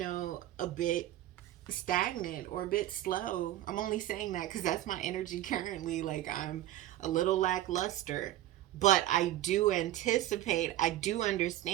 a bit stagnant or a bit slow. I'm only saying that because that's my energy currently. Like I'm a little lackluster, but I do anticipate, I do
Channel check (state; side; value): quieter; left; 13.8 dB